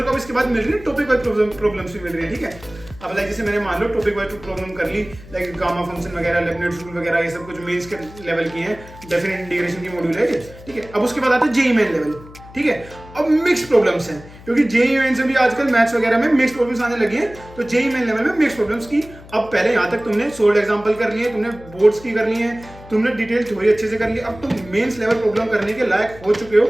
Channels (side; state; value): left; noise; hum, 19 dB below the sound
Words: को अब इसके बाद मिल रही है टॉपिक वाइज प्रॉब्लम्स भी मिल रही है, ठीक है। अब लाइक जैसे मैंने मान लो टॉपिक वाइज प्रॉब्लम कर ली, लाइक गामा फंक्शन वगैरह, लेबनिज़ रूल वगैरह, ये सब कुछ मेंस के लेवल की है, डेफिनेट इंटीग्रेशन की मॉड्यूल है, ठीक है। अब उसके बाद आता है जेईई मेन लेवल, ठीक है। अब मिक्स प्रॉब्लम्स हैं, क्योंकि जेईई मेन से भी आजकल मैथ्स वगैरह में मिक्स प्रॉब्लम्स आने लगी हैं, तो जेईई मेन लेवल में मिक्स प्रॉब्लम्स की अब पहले यहाँ तक तुमने सोल्ड एग्जांपल कर लिए, तुमने बोर्ड्स की कर ली है, तुमने डिटेल थ्योरी अच्छे से कर ली, अब तुम मेंस लेवल प्रॉब्लम करने के लायक हो चुके हो,